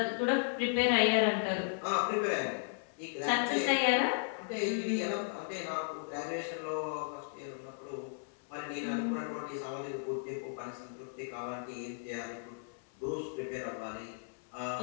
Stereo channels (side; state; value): right; silent; 54 dB below the other